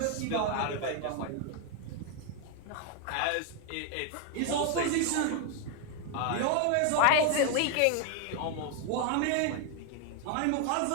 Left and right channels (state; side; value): different; both; correlation 0.01